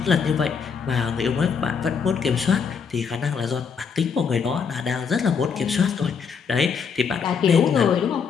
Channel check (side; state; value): right; quieter; 6.2 dB